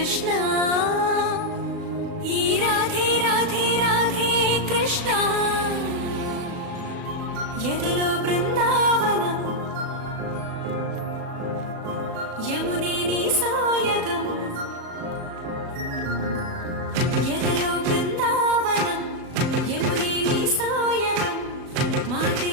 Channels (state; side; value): late; left; 37 ms